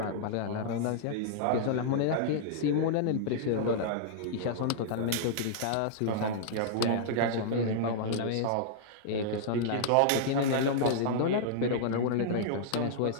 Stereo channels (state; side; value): different; both; correlation -0.02